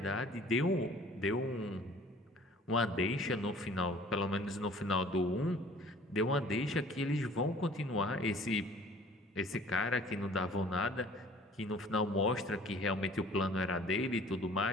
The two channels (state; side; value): normal; both; correlation 0.51